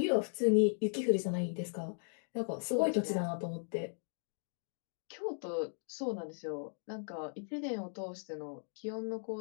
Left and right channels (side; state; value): right; silent; digital silence